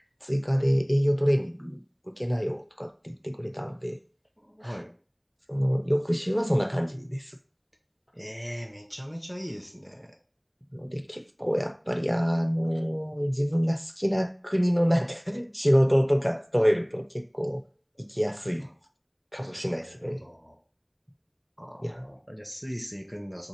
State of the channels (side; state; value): both; identical; correlation 1.00